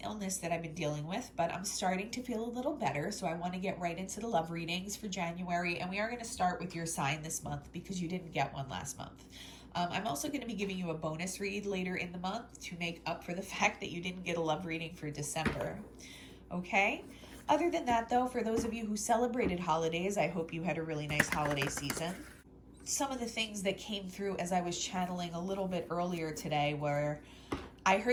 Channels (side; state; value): both; identical; correlation 1.00